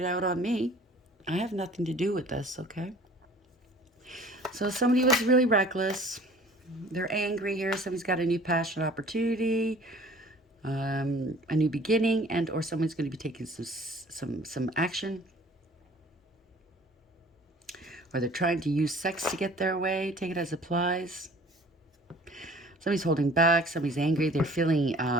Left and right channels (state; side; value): normal; both; correlation 0.49